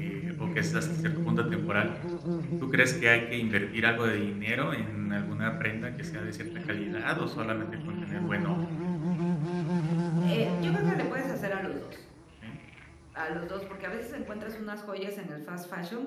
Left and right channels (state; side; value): identical; both; correlation 1.00